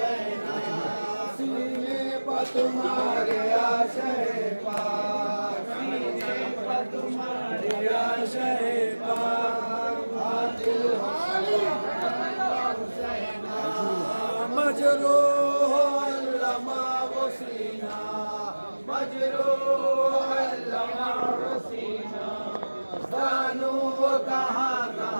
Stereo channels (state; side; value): inverted; both; correlation -1.00